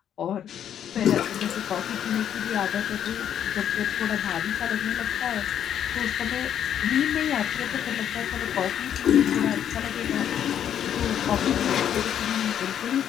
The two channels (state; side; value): quieter; right; 9.6 dB